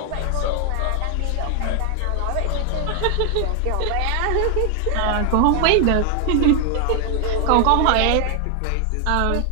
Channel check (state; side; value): different; both; correlation 0.00